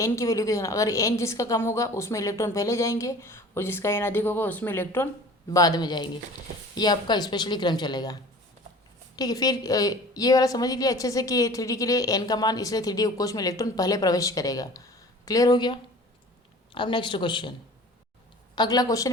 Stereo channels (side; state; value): both; normal; correlation 0.44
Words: की वैल्यू को देखना। अगर एन जिसका कम होगा उसमें इलेक्ट्रॉन पहले जाएंगे और जिसका एन अधिक होगा उसमें इलेक्ट्रॉन बाद में जाएंगे। ये आपका स्पेशली क्रम चलेगा। ठीक है, फिर ये वाला समझ लीजिए अच्छे से कि 3D के लिए एन का मान, इसलिए 3D उपकोष में इलेक्ट्रॉन पहले प्रवेश करेगा। क्लियर हो गया। अब नेक्स्ट क्वेश्चन, अगला क्वेश्चन